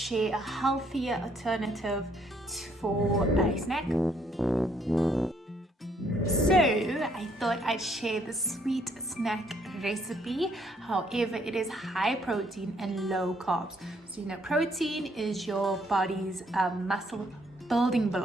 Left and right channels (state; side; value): normal; both; correlation 0.68